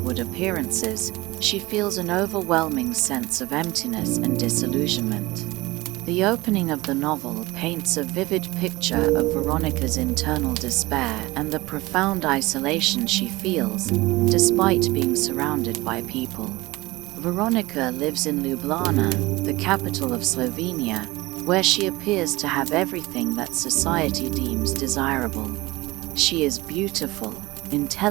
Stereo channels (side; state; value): left; quieter; 20.6 dB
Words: appearances, she feels an overwhelming sense of emptiness and disillusionment. The opening of the novel paints a vivid picture of Veronika's internal despair and the profound isolation she feels, despite being surrounded by people. Veronika lives in Ljubljana, the capital of Slovenia, where she appears to have everything that society deems desirable. She is beautiful,